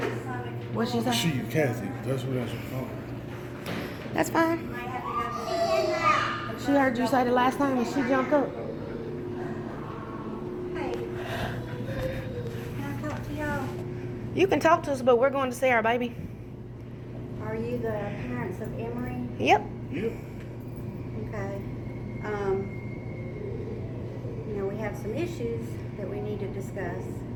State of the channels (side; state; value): both; identical; correlation 1.00